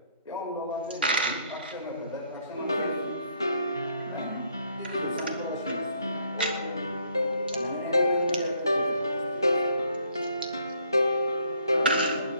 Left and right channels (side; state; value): both; inverted; correlation -0.66